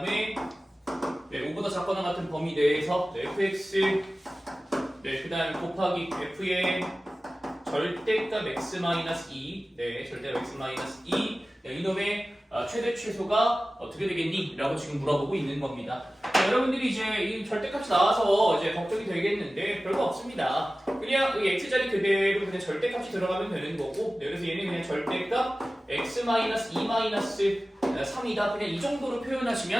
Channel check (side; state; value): both; normal; correlation 0.96